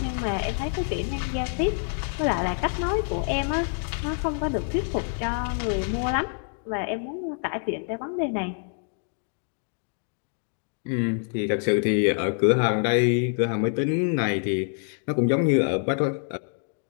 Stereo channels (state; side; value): silent; right; 56 dB below the other